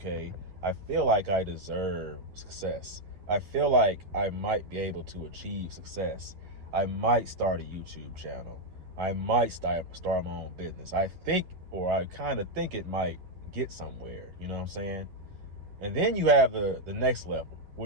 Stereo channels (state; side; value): late; left; 11 ms